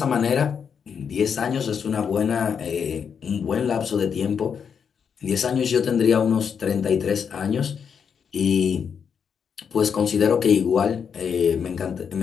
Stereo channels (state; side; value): quieter; right; 6.9 dB